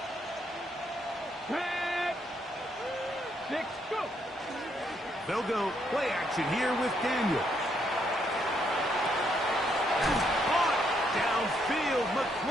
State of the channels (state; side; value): normal; both; correlation 0.74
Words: Six, go. They'll go play action here with Daniel. Downfield,